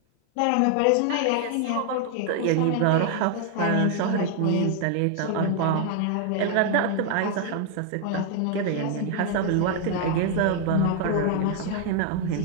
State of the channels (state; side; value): different; both; correlation 0.00